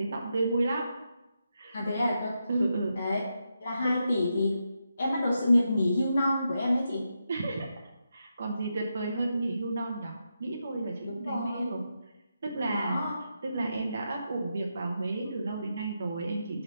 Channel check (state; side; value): inverted; both; correlation -0.85